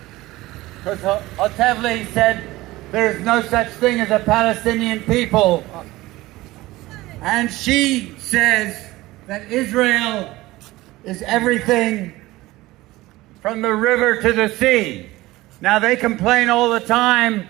Because Otevli said there is no such thing as a Palestinian people. And she says that Israel is everything from the river to the sea. Now they complain all the time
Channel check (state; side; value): quieter; left; 18.6 dB